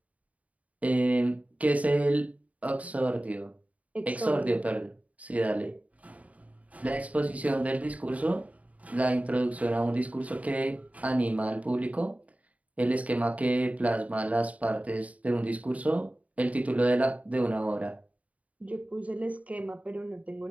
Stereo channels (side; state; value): left; late; 0.069 ms